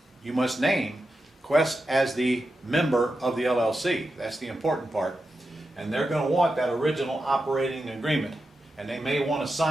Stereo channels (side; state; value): both; normal; correlation 0.89